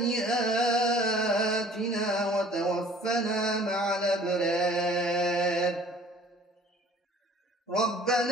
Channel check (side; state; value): both; normal; correlation 0.52